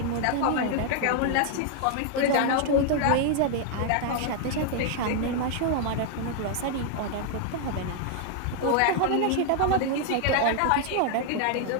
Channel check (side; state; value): both; different; correlation 0.00